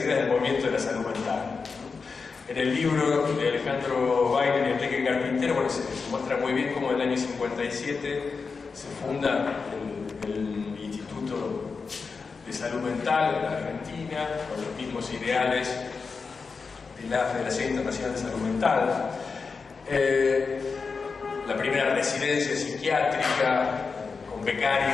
del movimiento de la salud mental. En el libro de Alejandro Weiner y Enrique Carpintero, bueno, se muestra muy bien cómo en el año 57 se funda el Instituto de Salud Mental en la Argentina, con los mismos ideales de la Federación Internacional de Salud Mental. La primera residencia psiquiátrica con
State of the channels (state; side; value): quieter; right; 4.9 dB